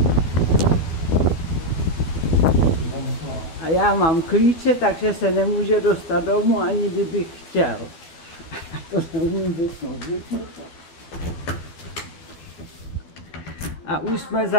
A já mám klíče, takže se nemůže dostat domů, ani kdybych chtěl. To neumím vypnout. A už jsme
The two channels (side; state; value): right; late; 12 ms